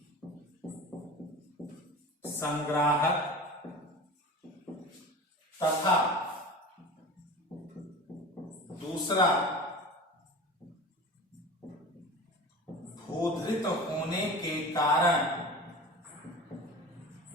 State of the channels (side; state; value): both; normal; correlation 0.35